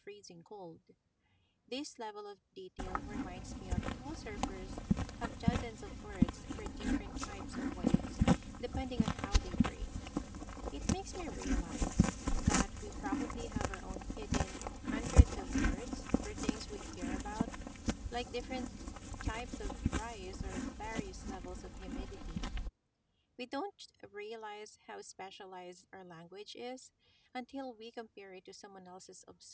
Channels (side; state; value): both; identical; correlation 1.00